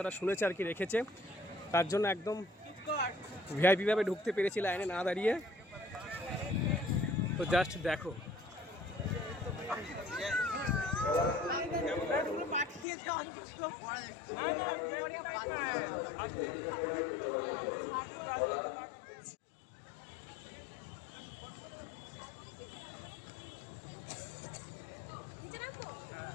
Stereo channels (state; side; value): drops out; right; at 12.9 s